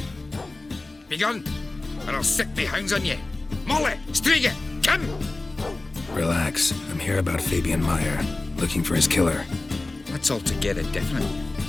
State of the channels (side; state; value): right; quieter; 3.1 dB